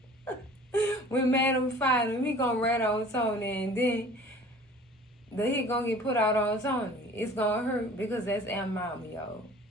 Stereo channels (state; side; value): normal; both; correlation 0.47